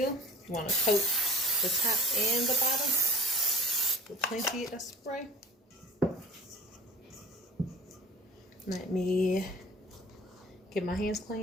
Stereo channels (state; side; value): normal; both; correlation 0.44